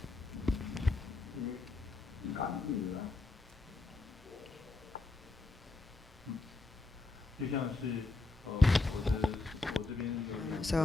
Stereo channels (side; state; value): right; quieter; 3.4 dB